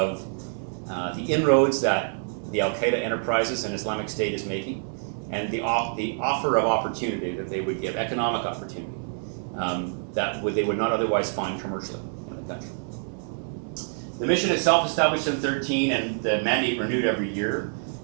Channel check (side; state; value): left; silent; 61 dB below the other